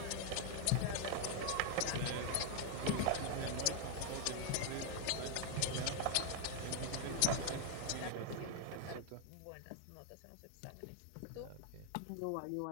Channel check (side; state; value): both; different; correlation 0.01